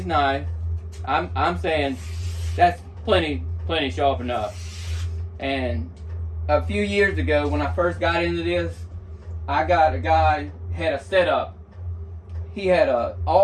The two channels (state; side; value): identical; both; correlation 1.00